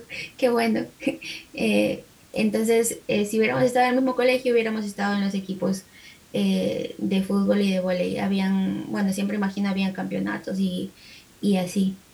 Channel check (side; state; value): both; identical; correlation 1.00